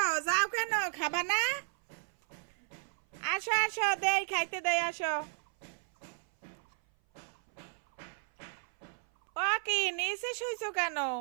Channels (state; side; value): silent; left; 55 dB below the other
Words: যাও, কেন খাবা না? আসো আসো, দেই খাইতে দেই, আসো। ও কি নিচে শুইছো কেন?